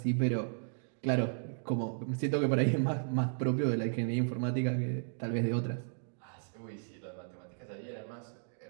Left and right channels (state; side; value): silent; left; digital silence